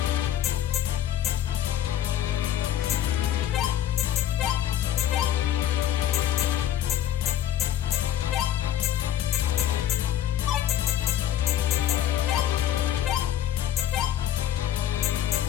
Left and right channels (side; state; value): right; quieter; 11.4 dB